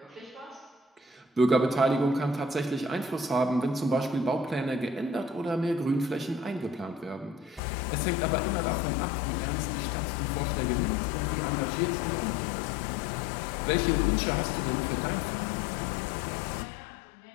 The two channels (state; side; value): drops out; right; at 7.6 s